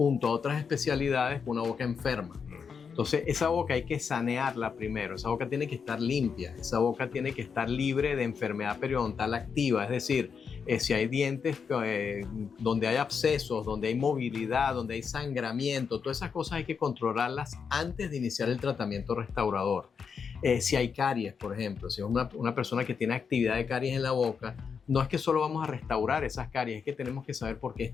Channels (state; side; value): quieter; right; 6.2 dB